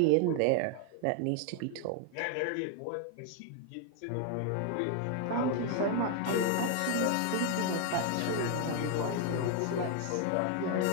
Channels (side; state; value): both; different; correlation 0.01